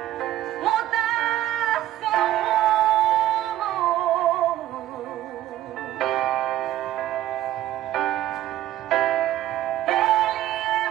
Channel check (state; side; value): quieter; left; 13.6 dB